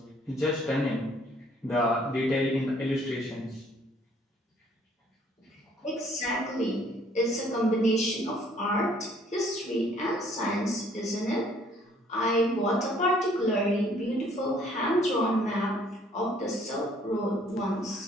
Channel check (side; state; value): both; normal; correlation 0.61